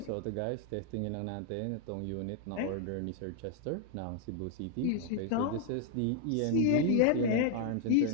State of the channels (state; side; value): different; both; correlation 0.00